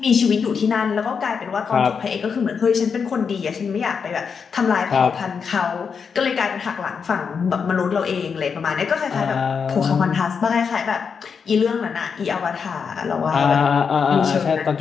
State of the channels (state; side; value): quieter; right; 6.1 dB